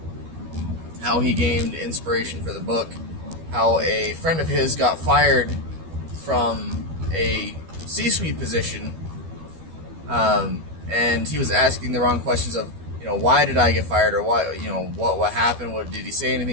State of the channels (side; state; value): left; late; 12 ms